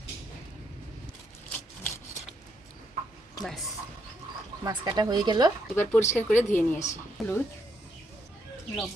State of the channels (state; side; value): normal; both; correlation 0.76